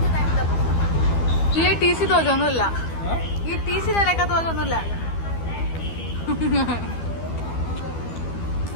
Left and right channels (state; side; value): late; right; 12 ms